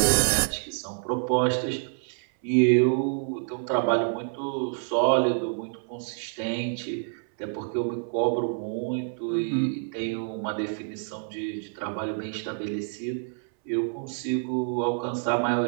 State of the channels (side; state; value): left; silent; 60 dB below the other